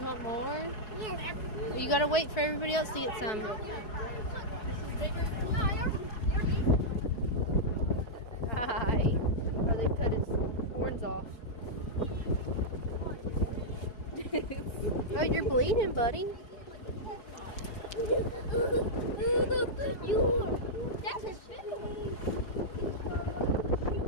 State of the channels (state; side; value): late; right; 4.6 ms